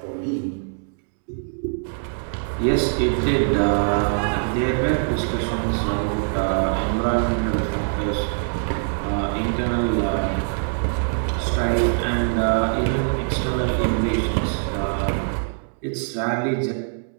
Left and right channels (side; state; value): left; silent; digital silence